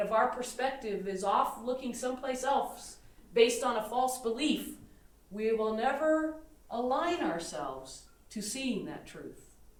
our perspective is off looking someplace else, based on a false belief, we will never align ourselves to seeing that truth.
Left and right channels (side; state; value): both; identical; correlation 1.00